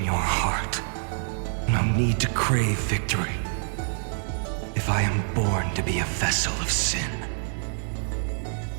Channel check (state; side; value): silent; left; 61 dB below the other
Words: your heart. No need to crave victory. If I am born to be a vessel of sin,